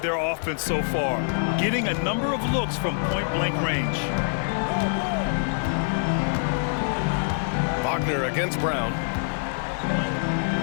their offense so far, getting a number of looks from point-blank range. Wagner against Brown.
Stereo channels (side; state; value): right; silent; digital silence